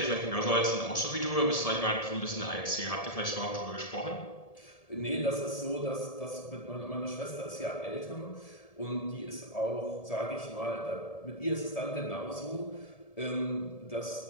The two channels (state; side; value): late; right; 1.7 ms